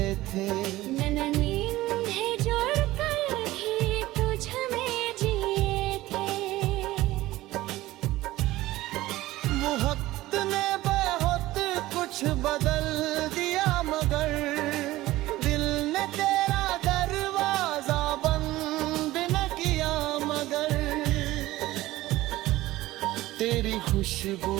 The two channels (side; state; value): left; quieter; 17.1 dB